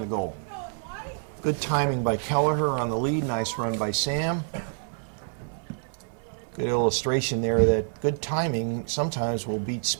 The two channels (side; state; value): left; silent; 59 dB below the other